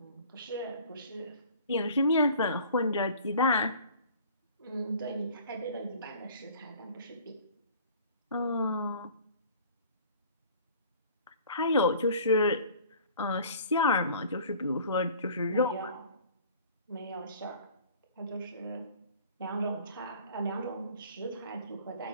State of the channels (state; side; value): inverted; both; correlation -0.48